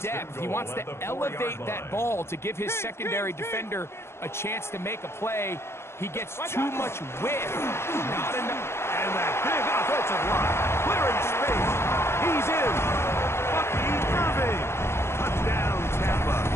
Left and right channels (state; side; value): late; right; 0.12 ms